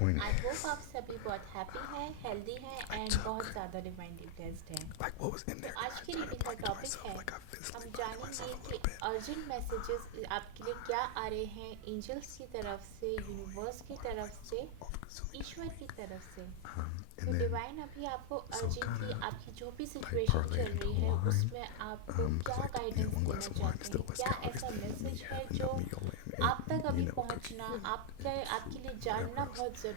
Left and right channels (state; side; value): different; both; correlation 0.00